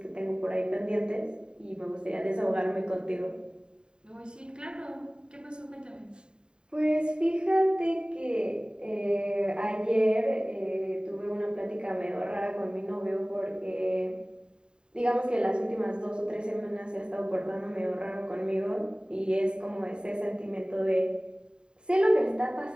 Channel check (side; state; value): left; late; 0.049 ms